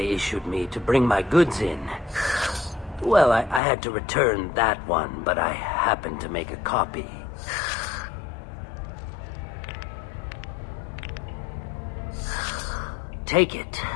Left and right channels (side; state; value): right; drops out; at 3.6 s